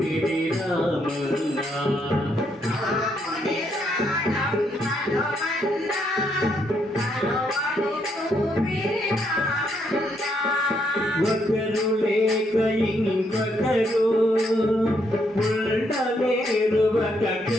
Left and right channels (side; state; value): both; normal; correlation 0.75